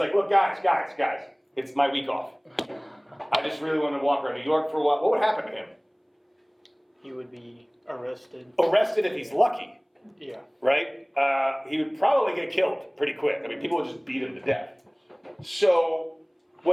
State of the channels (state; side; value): identical; both; correlation 1.00